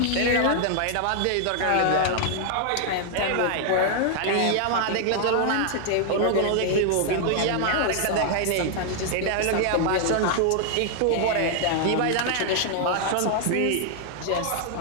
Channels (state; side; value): different; both; correlation 0.00